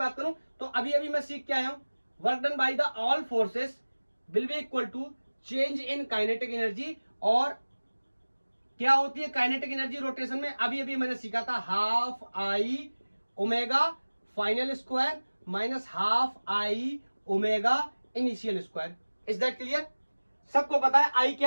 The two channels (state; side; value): inverted; both; correlation -1.00